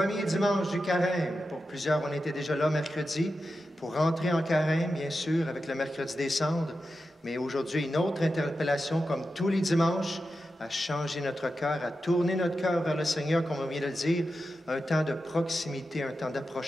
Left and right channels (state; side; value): normal; both; correlation 0.90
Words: dimanche du carême. Pour plusieurs, on était déjà là mercredi pour rentrer en carême, bien sûr, avec le mercredi des cendres. Mais aujourd'hui, une autre interpellation, comme tous les dimanches, à changer notre cœur, à tourner notre cœur vers le Seigneur, comme on vient de le dire, un temps de proximité, un temps